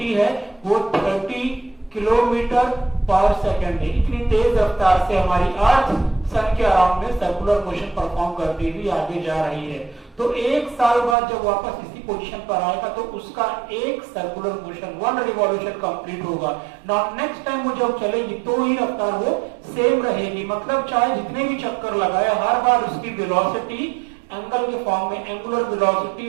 है वो 30 किलोमीटर पर सेकंड है। इतनी तेज रफ्तार से हमारी अर्थ सन के अराउंड में सर्कुलर मोशन परफॉर्म करती हुई आगे जा रही है। तो एक साल बाद जब वापस इसी पोजीशन पर आएगा तो उसका एक सर्कुलर मोशन, 1 रिवॉल्यूशन कंप्लीट होगा। नाउ नेक्स्ट टाइम वो जब चलेगी तो ही रफ्तार वो सेम रहेगी। मतलब चाहे जितने भी चक्कर लगाए हर बार उसकी वेलोसिटी एंगल के फॉर्म में एंगुलर वेलोसिटी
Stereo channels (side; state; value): left; drops out; at 11.2 s